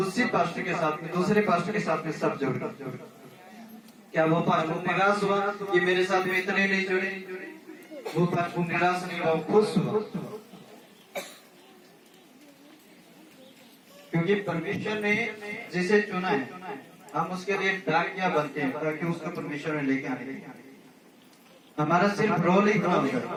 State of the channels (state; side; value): identical; both; correlation 1.00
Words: पास्टर के साथ में दूसरे पास्टर के साथ में सब जुड़ गए। क्या वो पास्टर निराश हुआ कि मेरे साथ में इतने नहीं जुड़े? वो पास्टर निराश नहीं हुआ, खुश हुआ, क्योंकि परमेश्वर ने जिसे चुना है हम उसके लिए डाकिया बनते हैं ताकि उसको परमेश्वर ने लेके आने। हमारा सिर्फ रोल ही काम है,